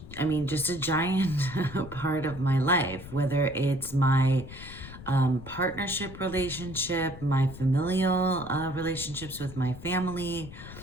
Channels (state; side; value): noise; left; rumble, 14 dB below the sound